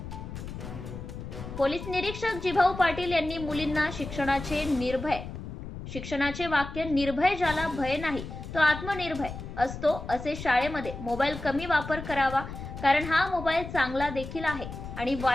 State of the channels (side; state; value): left; noise; rumble, 9 dB below the sound